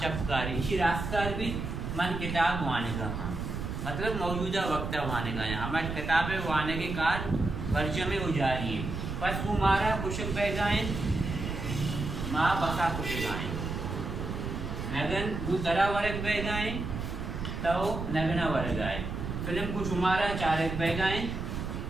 इसी रास्कार भी मन किताब वाने का हाँ मतलब मौजूदा वक्त वाने का है हमारी किताबें वाने के कार वर्ज में उजारी है बस कुमारा कुशक बैगाएं माँ बसा कुशगाएं नगन वो तरा वर्ग बैगाएं तो नगना वर्ग आए फिल्म को शुमारा चारक बैगाएं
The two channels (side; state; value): right; noise; rumble, 5 dB below the sound